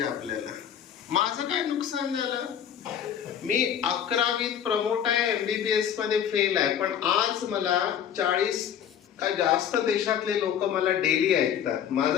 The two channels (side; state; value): right; quieter; 9.0 dB